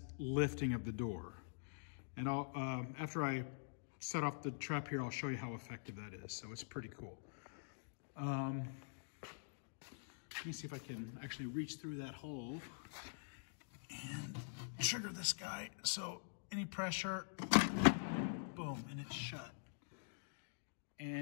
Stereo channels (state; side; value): silent; right; digital silence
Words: lifting of the door. And I'll, after I set off the trap here, I'll show you how effective that is. So it's pretty cool. Let me see if I can actually reach through that hole and trigger this guy. So any pressure, boom, and it's shut.